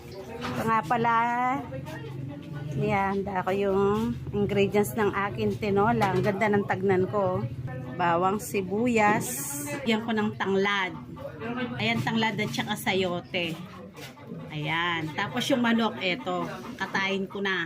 Ito nga pala. Yan, ako yung ingredients ng akin tinola. Ang ganda ng tagnan ko. Bawang sibuyas. Yan ko ng tanglad. Ayan, tanglad at saka sayote. Ayan. Tapos yung manok, eto. Katayin ko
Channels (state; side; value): identical; both; correlation 1.00